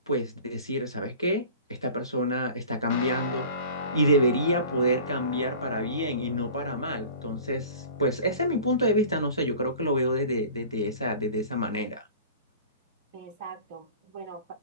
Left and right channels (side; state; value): both; inverted; correlation -0.42